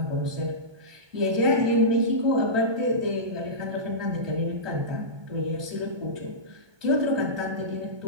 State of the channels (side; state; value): left; late; 1.2 ms